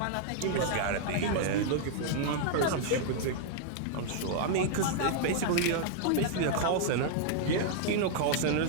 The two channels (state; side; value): different; both; correlation -0.01